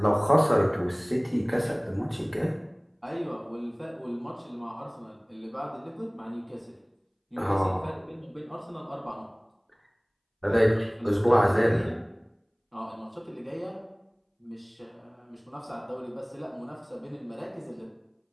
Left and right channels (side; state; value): both; identical; correlation 1.00